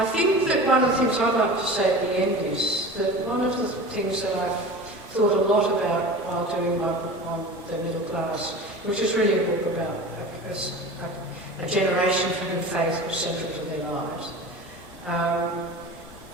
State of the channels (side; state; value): both; normal; correlation 0.35